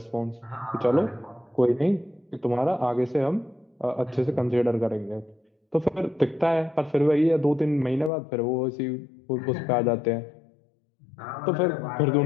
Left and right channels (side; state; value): right; drops out; at 8.1 s